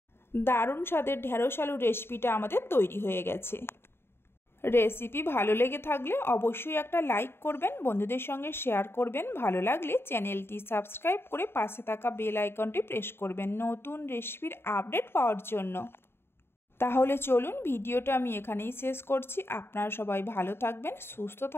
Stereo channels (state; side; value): late; right; 0.11 ms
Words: দারুণ স্বাদের ঢেঁড়স আলুর রেসিপিটা আমাদের তৈরি হয়ে গেছে। রেসিপি ভালো লেগে থাকলে অবশ্যই একটা লাইক করবেন, বন্ধুদের সঙ্গে শেয়ার করবেন। ভালো লাগলে চ্যানেলটি সাবস্ক্রাইব করে পাশে থাকা বেল আইকনটি প্রেস করবেন নতুন রেসিপির আপডেট পাওয়ার জন্য। তাহলে চলুন ভিডিওটা আমি এখানেই শেষ করছি। আপনারা সবাই ভালো থাকবেন, সুস্থ